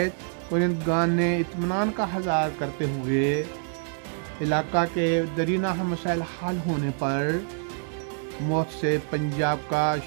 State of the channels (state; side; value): silent; left; 61 dB below the other